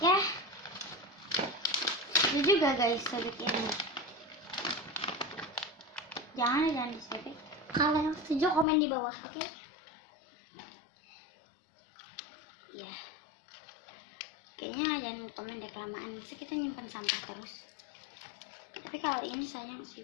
ya. Itu juga guys sobek ini. Jangan disobek. Kalau yang setuju komen di bawah, oke? Ya. Kayaknya jangan komen deh kelamaan. Bisa kita nyimpan sampah terus. Tapi kalau ini sayang sih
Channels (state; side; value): drops out; right; at 8.7 s